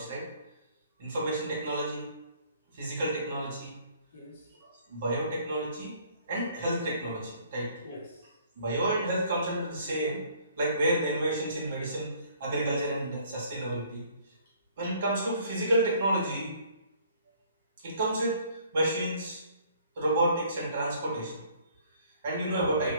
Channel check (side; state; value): both; inverted; correlation -0.59